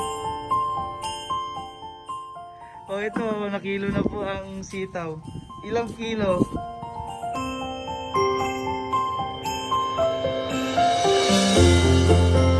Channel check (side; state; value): both; identical; correlation 1.00